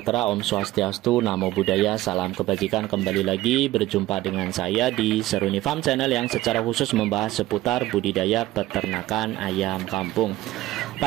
Om Swastiastu, Namo Buddhaya, salam kebajikan. Kembali lagi berjumpa dengan saya di Seruni Farm Channel yang secara khusus membahas seputar budidaya peternakan ayam kampung.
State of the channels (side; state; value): left; quieter; 16.3 dB